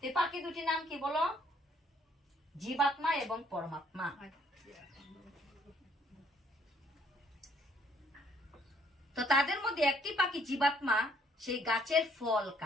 এই পাখি দুটি নাম কি বলো? জীবাত্মা এবং পরমাত্মা। তো তাদের মধ্যে একটি পাখি জীবাত্মা সেই গাছের ফল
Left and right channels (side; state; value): both; normal; correlation 0.64